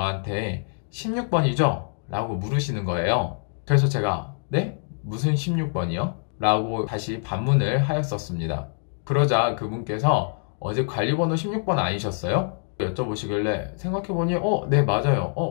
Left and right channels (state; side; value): silent; right; 61 dB below the other